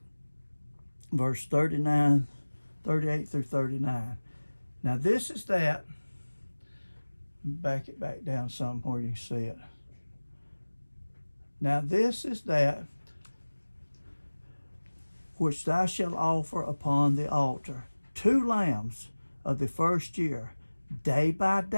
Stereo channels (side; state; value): both; inverted; correlation -1.00